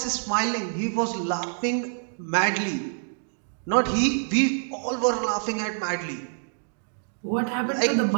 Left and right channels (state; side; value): silent; left; digital silence